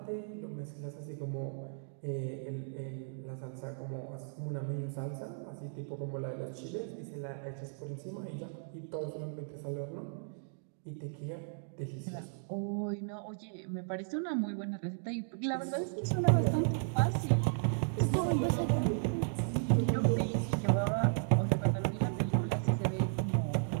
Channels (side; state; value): left; silent; digital silence